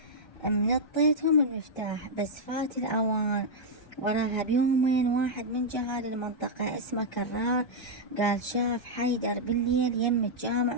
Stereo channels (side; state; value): right; late; 1.3 ms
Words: منطيتهم المفتاح بس فات الاوان. وراها بيومين واحد من جهال المنطقة اسمه كرار قال شاف حيدر بالليل يم